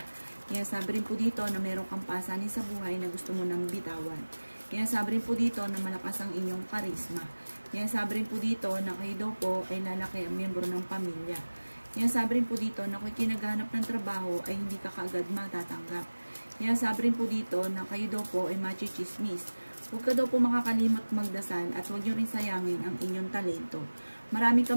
Kaya sabi rin po dito na mayroong kang pasanin sa buhay na gusto mo nang bitawan. Kaya sabi rin po dito na malakas ang inyong karisma. Kaya sabi rin po dito na kayo daw po ay lalaki ang miyembro ng pamilya. Kaya sabi rin po dito na kung kinaghanap ng trabaho ay hindi ka kaagad matatanggap. Kaya sabi rin po dito na kayo daw po ay machichismis. Huwag ka daw po makakalimot magdasal at huwag nyo rin sayangin ang inyong talento. Marami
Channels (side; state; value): both; inverted; correlation -1.00